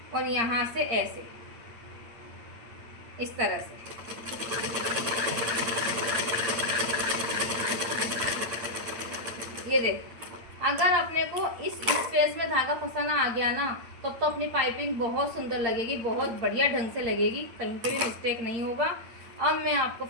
और यहाँ से ऐसे, इस तरह से। ये देख, अगर अपने को इस स्पेस में धागा फंसाना आ गया ना, तब तो अपनी पाइपिंग बहुत सुंदर लगेगी, बहुत बढ़िया ढंग से लगेगी, कहीं पे भी मिस्टेक नहीं होगा। अब मैं आपको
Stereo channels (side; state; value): left; late; 8.7 ms